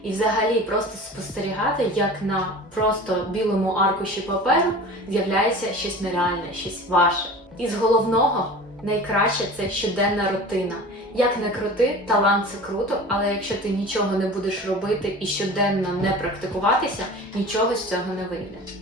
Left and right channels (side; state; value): both; normal; correlation 0.38